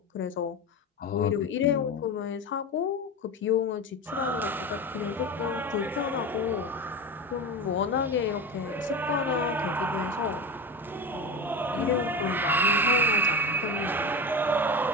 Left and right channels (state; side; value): normal; both; correlation 0.25